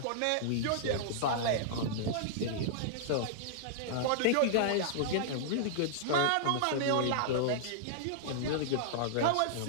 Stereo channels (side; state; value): both; different; correlation -0.02